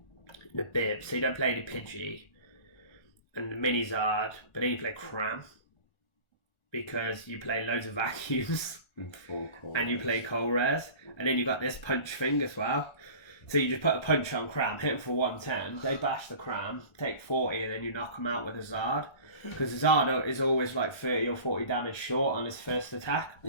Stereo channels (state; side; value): late; right; 1.3 ms